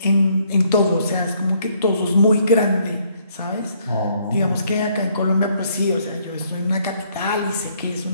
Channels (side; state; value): both; inverted; correlation -0.68